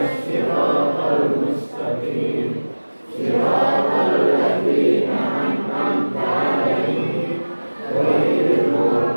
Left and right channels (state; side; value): inverted; both; correlation -1.00